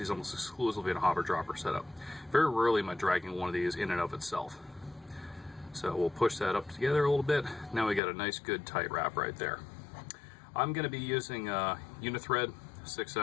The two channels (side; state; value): right; drops out; at 8.0 s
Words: almost exclusively in a hopper dropper setup. Very rarely am I dragging one of these in and of itself. So we'll push that up together a little bit. Now we got a nice good tight wrap right there. I'm going to be using Unithread